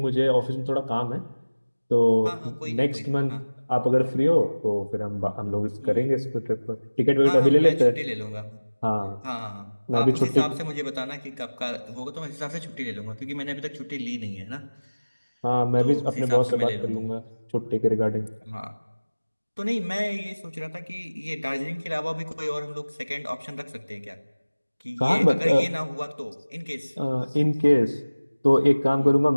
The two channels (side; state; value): both; inverted; correlation -1.00